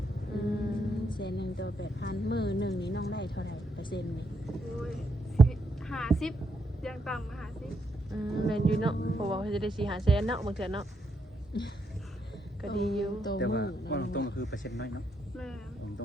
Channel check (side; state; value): both; normal; correlation 0.78